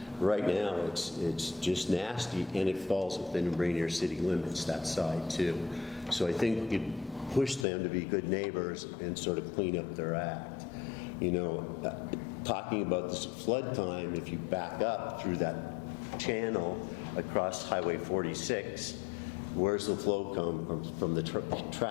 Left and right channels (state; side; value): drops out; right; at 7.7 s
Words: right now it's just nasty, and it falls within Ranier city limits, that side too. So I think you push them to be good neighbors and sort of clean up their act. You know, talking about this flood time, if you back up through that channel across Highway 46, where's the flow come from the